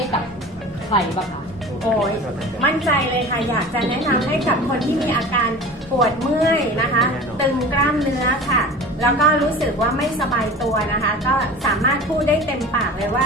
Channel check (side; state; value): both; normal; correlation 0.37